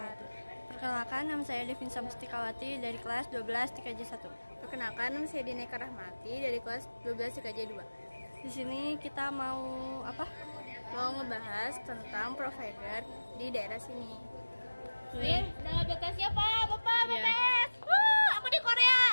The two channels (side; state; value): both; inverted; correlation -1.00